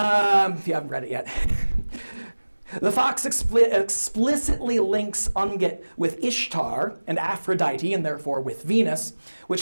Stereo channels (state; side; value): inverted; both; correlation -1.00